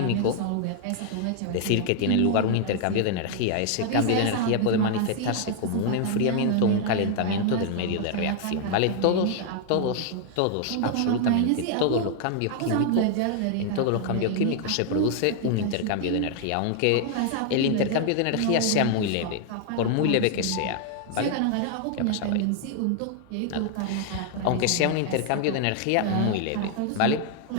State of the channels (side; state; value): both; different; correlation 0.00